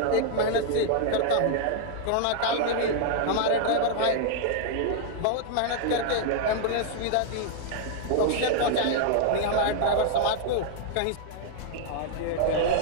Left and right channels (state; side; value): different; both; correlation -0.01